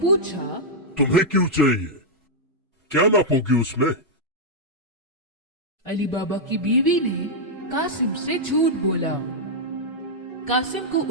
پوچھا، تمہیں کیوں چاہیے؟ کیا ناپو گی اس میں؟ علی بابا کی بیوی نے قاسم سے جھوٹ بولا۔ قاسم کو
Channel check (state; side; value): normal; both; correlation -0.05